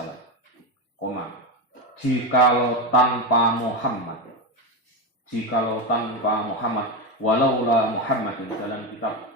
Jikalau tanpa Muhammad, walaula Muhammadin, dalam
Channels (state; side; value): normal; both; correlation 0.13